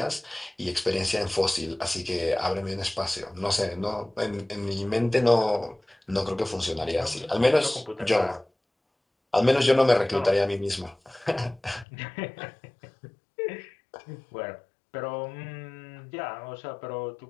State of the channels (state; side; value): drops out; right; at 11.9 s